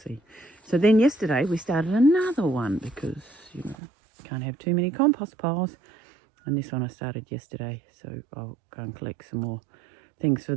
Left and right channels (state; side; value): drops out; left; at 3.8 s